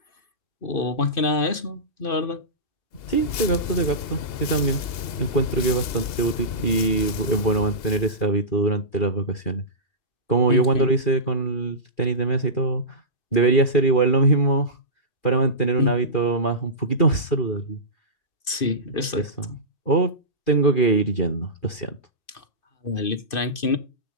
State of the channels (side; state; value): right; late; 2.6 ms